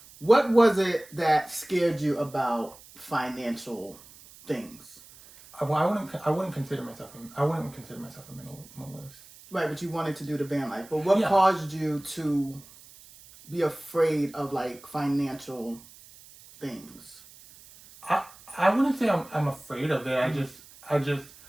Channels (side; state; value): right; noise; hiss, 21 dB below the sound